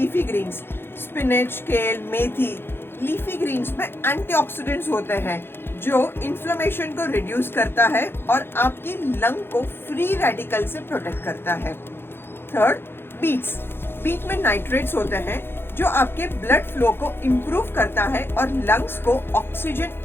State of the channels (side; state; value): right; late; 0.11 ms